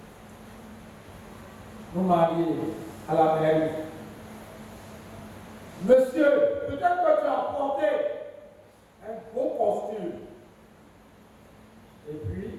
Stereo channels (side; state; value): both; identical; correlation 1.00